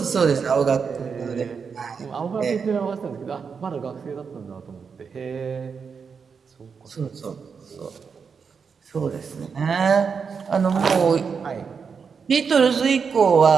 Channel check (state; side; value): quieter; left; 5.9 dB